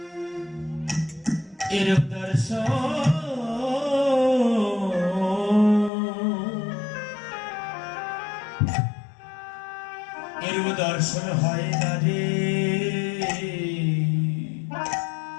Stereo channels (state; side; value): drops out; right; at 5.9 s